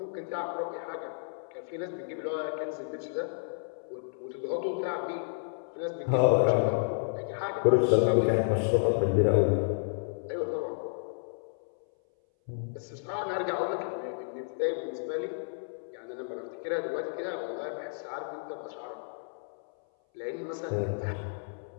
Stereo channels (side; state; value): right; silent; 57 dB below the other